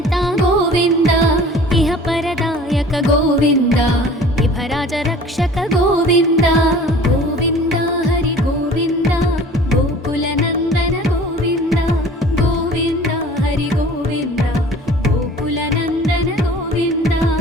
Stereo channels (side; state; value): both; normal; correlation 0.46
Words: గోవింద ఇహ పరదాయక గోవింద విభరాజ రక్షక గోవింద గోవింద హరి గోవింద గోకుల నందన గోవింద గోవింద హరి గోవింద గోకుల నందన గోవింద